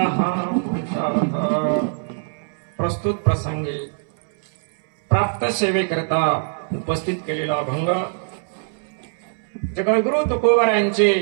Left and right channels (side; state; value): left; silent; 64 dB below the other